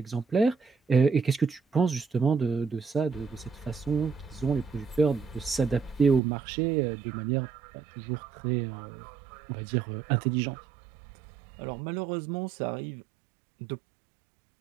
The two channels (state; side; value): drops out; left; at 6.2 s